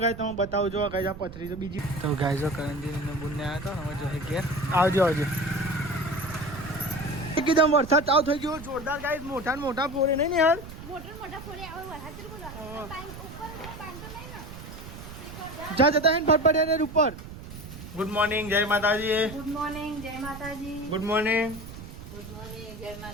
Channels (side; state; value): right; noise; rumble, 13 dB below the sound